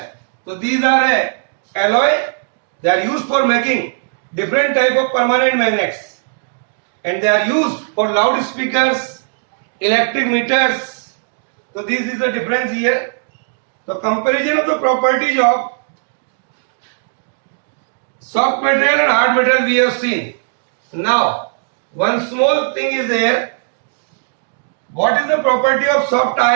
So these are a alloy. They are used for making different type of permanent magnets, and they are used for loudspeakers, electric meters. So this is the difference here. The comparison of the properties of soft material and hard material we have seen. Now, one small thing is there. What is the property of soft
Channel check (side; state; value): left; silent; digital silence